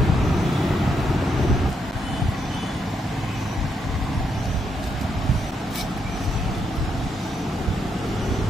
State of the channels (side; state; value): both; normal; correlation 0.78